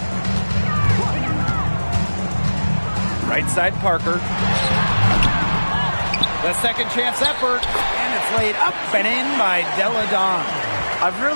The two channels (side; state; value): both; inverted; correlation -1.00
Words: Right side Parker. The second chance effort. And it's laid up and in by Deladon. I've